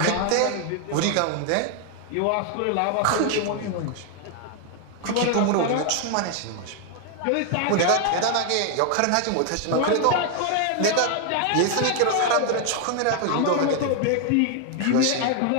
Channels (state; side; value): different; both; correlation 0.00